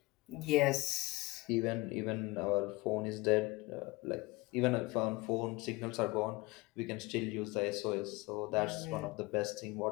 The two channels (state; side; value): quieter; right; 22.4 dB